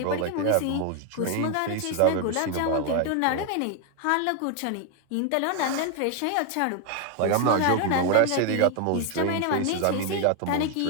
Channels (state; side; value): different; both; correlation 0.01